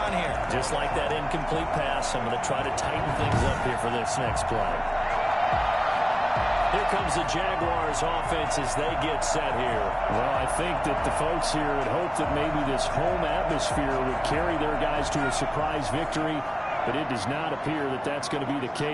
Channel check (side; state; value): both; identical; correlation 1.00